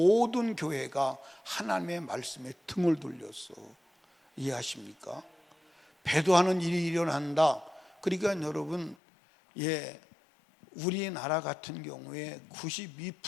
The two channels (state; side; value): drops out; right; at 9.0 s